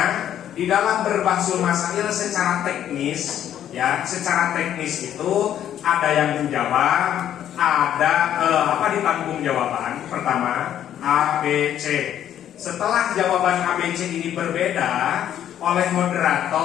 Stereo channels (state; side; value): quieter; right; 10.7 dB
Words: di dalam berbahsul masail secara teknis, ya, secara teknis itu ada yang menjawab, ada ditanggung jawaban. Pertama A, B, C. Setelah jawaban A, B, C ini berbeda oleh